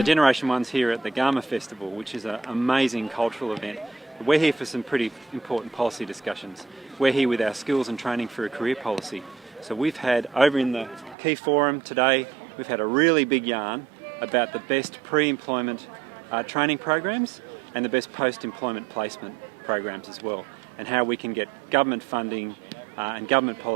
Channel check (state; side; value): drops out; left; at 11.2 s